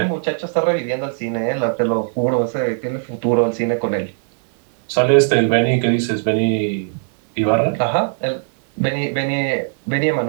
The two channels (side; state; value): left; silent; digital silence